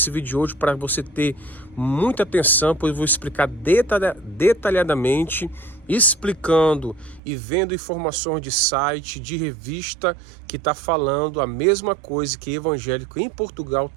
vídeo de hoje para você ter muita atenção, pois eu vou explicar detalhadamente, explicando e vendo informações de site, de revista, que está falando a mesma coisa, que evangélico em Portugal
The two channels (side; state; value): left; drops out; at 7.2 s